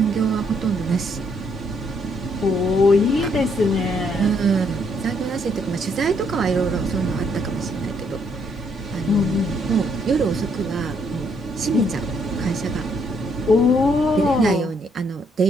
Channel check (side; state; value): both; normal; correlation 0.71